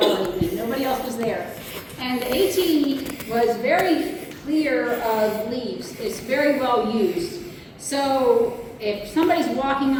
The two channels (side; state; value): both; identical; correlation 1.00